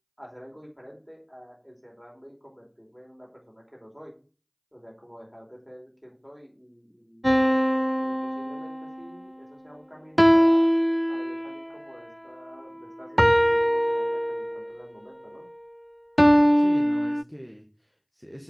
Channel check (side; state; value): both; identical; correlation 1.00